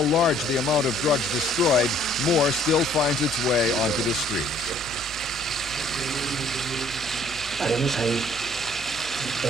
large the amount of drugs destroyed, more still finds its way onto the streets.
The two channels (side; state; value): right; noise; hum, 19 dB below the sound